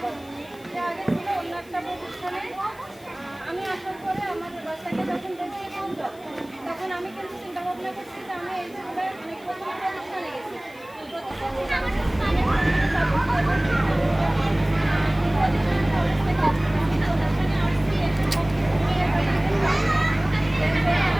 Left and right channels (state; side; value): noise; left; hiss, 26 dB below the sound